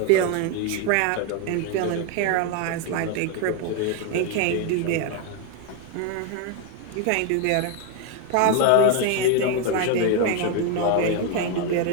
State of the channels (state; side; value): different; both; correlation 0.01